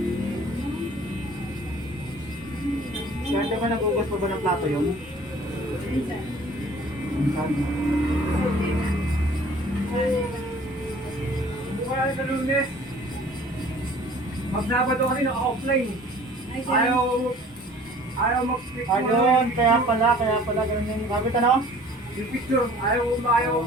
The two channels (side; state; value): both; normal; correlation 0.50